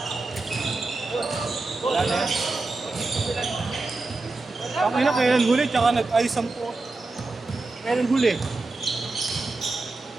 Wala na yan. Ang ina, kailan huli, tsaka nag-ayos ang po. Kailan huli?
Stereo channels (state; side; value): quieter; left; 3.4 dB